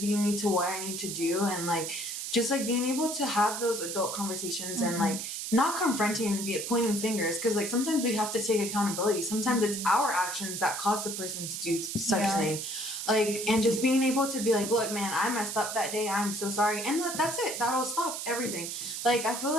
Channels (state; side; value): noise; right; hiss, 5 dB below the sound